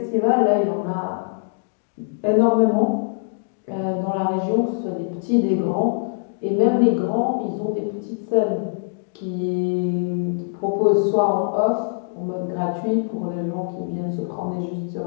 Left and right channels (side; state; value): right; silent; digital silence